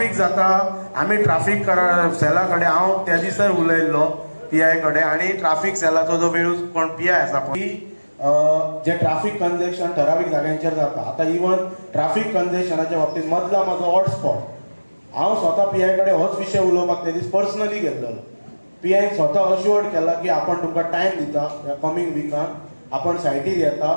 जाता आमी ट्राफीक सेला कडेन हांव त्या दिसा उलयल्लो PI कडेन आणि ट्राफीक सेलाचो जो वेळ कोण PI आसा पळय जे ट्राफीक कंजेशन ठरावीक जाग्यांचेर जाता. आतां इवन ट्राफीक कंजेशनाच्या बाबतींत मदला म्हाजो हॉटस्पॉट हांव स्वता PI कडेन होच विशय उलोवपाक ते दीस पर्सनली गेल्लो. PI स्वता अश्युअर्ड केला की आपण तुमकां टायम दिता ह्या कमिंग विकान आपण सायटीर येता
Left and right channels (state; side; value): inverted; both; correlation -1.00